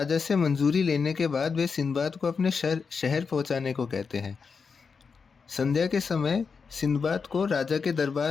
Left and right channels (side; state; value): right; quieter; 5.4 dB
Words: से मंजूरी लेने के बाद वे सिंदबाद को अपने शहर पहुँचाने को कहते हैं। संध्या के समय सिंदबाद को राजा के